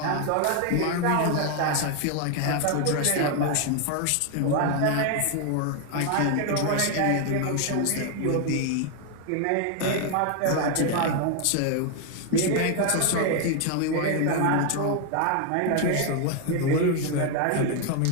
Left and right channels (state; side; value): different; both; correlation 0.01